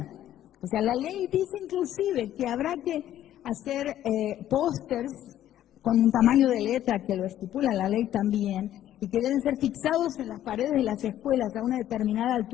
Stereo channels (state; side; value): quieter; right; 12.2 dB